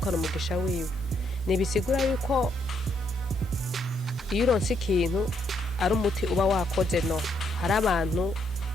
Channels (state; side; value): normal; both; correlation 0.74